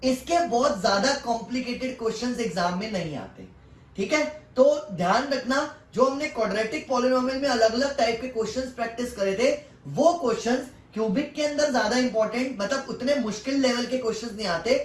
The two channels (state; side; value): identical; both; correlation 1.00